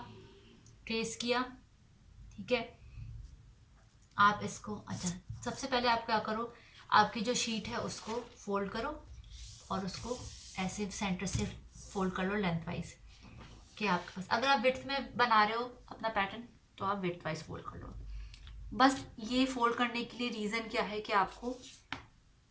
ट्रेस किया। ठीक है, आप इसको, अच्छा सबसे पहले आप क्या करो, आपकी जो शीट है उसको फोल्ड करो और उसको ऐसे सेंटर से फोल्ड कर लो लेंथ वाइज, कि आपके पास अगर आप विड्थ में बना रहे हो अपना पैटर्न तो आप विड्थ वाइज फोल्ड कर लो। बस ये फोल्ड करने के लिए रीज़न क्या है कि आपको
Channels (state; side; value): identical; both; correlation 1.00